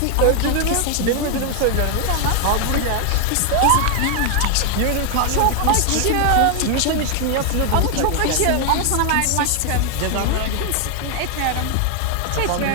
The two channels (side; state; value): both; different; correlation 0.00